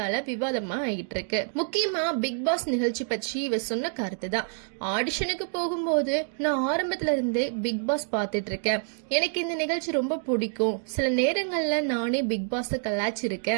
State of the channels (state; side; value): silent; left; 60 dB below the other